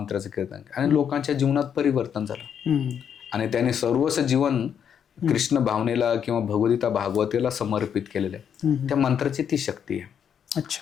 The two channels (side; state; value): right; quieter; 8.2 dB